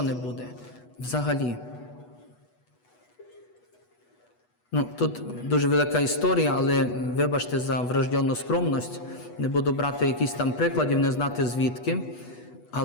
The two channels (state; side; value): late; right; 8.2 ms